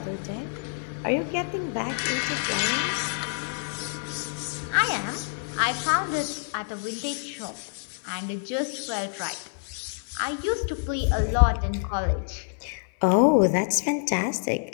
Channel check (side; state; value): right; silent; 60 dB below the other